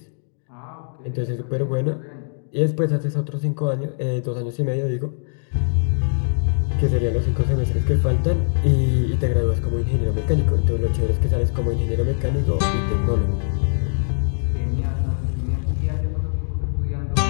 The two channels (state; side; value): silent; right; digital silence